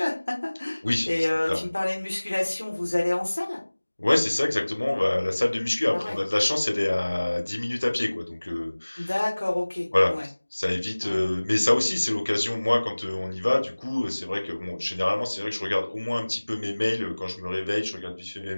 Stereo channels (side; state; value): both; inverted; correlation -1.00